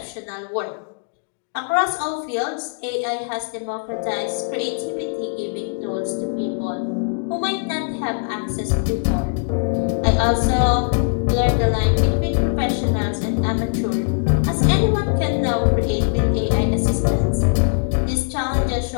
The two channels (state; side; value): silent; right; digital silence